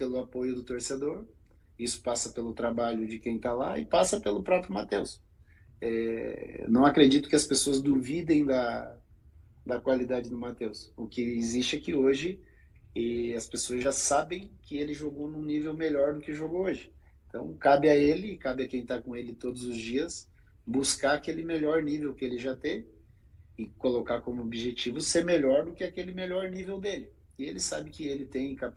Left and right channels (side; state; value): both; identical; correlation 1.00